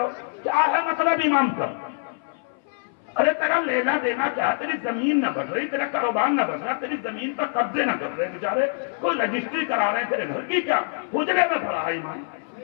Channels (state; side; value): silent; right; 59 dB below the other